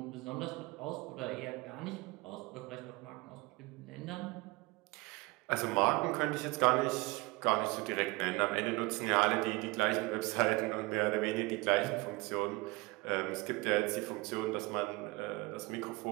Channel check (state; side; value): quieter; left; 23.5 dB